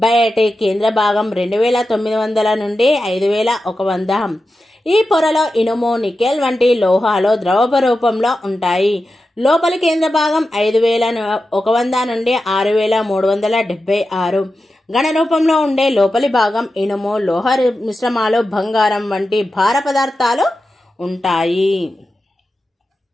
బయటి కేంద్ర భాగం 2900 నుండి 5100. ఈ పొరలో ఇనుము, నికెల్ వంటి లోహాలు ద్రవ రూపంలో ఉంటాయి. లోపలి కేంద్ర భాగం 5100 నుండి 6376. ఘన రూపంలో ఉండే లోపలి భాగం ఇనుము, లోహ మిశ్రమాలు, బంగారం వంటి భార పదార్థాలు ఉంటాయి.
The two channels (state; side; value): normal; both; correlation 0.92